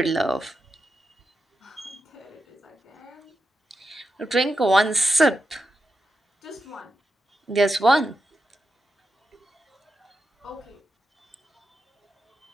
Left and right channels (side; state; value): both; normal; correlation 0.87